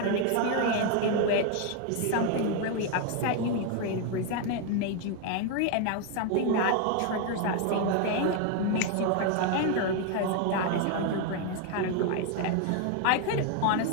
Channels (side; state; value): both; different; correlation 0.01